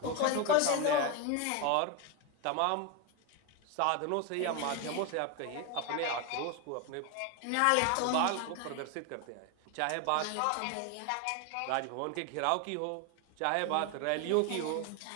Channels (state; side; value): different; both; correlation 0.02